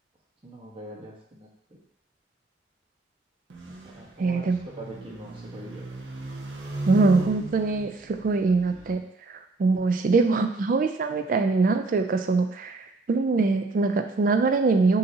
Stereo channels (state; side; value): quieter; left; 3.3 dB